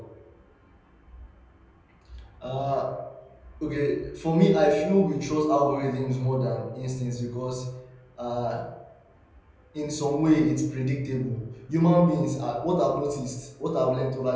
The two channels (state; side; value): identical; both; correlation 1.00